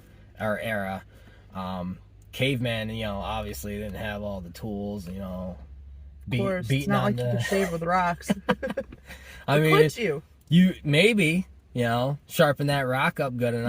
Caveman, obviously didn't have all the tools, of course, it's not like you could shave with rocks. I mean, could you maybe, sharpen that rock up good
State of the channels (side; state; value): both; identical; correlation 1.00